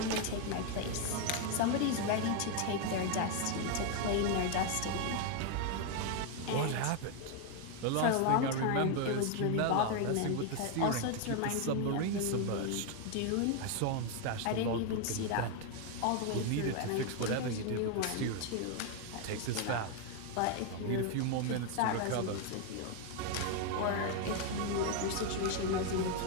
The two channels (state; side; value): different; both; correlation 0.01